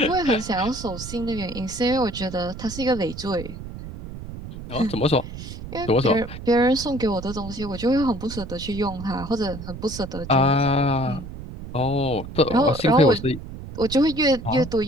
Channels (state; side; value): noise; right; rumble, 11 dB below the sound